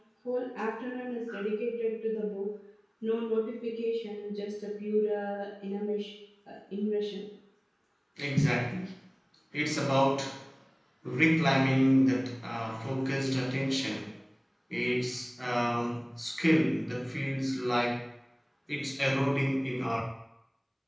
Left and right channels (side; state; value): both; identical; correlation 1.00